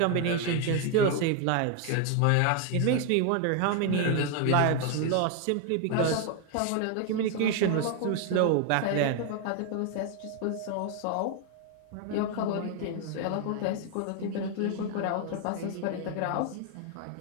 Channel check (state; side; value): different; both; correlation 0.01